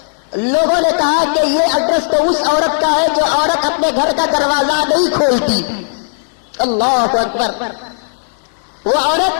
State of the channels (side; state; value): right; silent; digital silence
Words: لوگوں نے کہا کہ یہ ایڈریس تو اس عورت کا ہے جو عورت اپنے گھر کا دروازہ نہیں کھولتی. اللہ اکبر. وہ